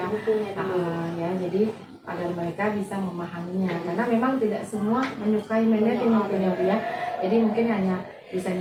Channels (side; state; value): both; identical; correlation 1.00